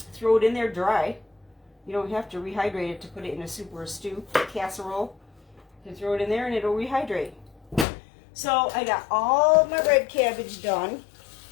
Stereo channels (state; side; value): drops out; right; at 7.9 s